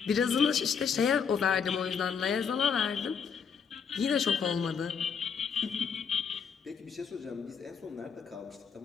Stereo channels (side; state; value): right; quieter; 6.6 dB